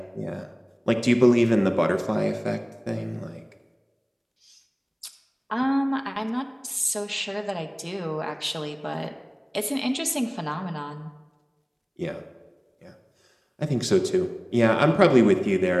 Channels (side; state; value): both; identical; correlation 1.00